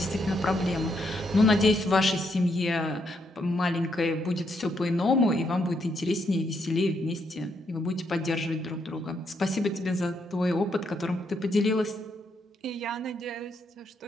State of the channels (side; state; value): both; normal; correlation 0.76